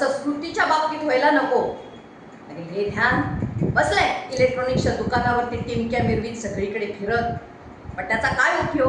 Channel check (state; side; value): identical; both; correlation 1.00